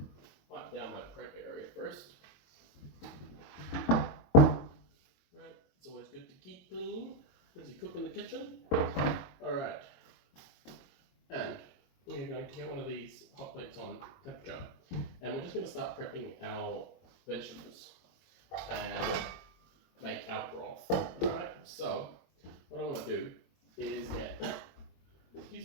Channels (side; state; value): right; late; 22 ms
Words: Wipe down my prep area first. Right, it's always good to keep clean as you cook in the kitchen. Alright, and we're going to get one of these hot plates on temperature, and we're just going to start prepping our vegetables and make our broth. Alright, so what I want to do is get, excuse